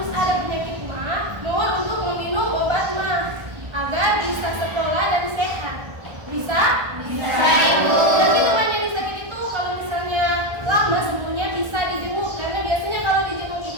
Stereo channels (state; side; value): late; left; 1.3 ms